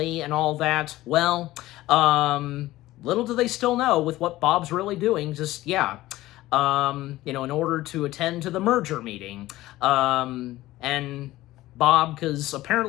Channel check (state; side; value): quieter; right; 16.7 dB